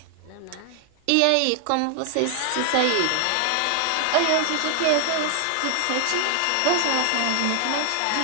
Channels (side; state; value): both; different; correlation 0.00